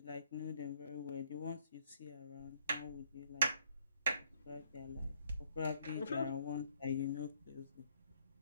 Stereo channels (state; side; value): inverted; both; correlation -0.68